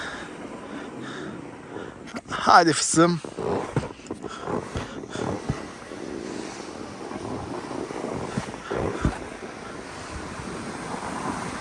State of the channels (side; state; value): both; identical; correlation 1.00